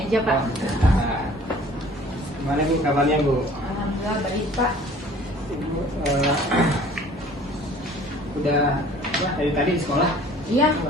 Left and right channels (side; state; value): both; normal; correlation 0.51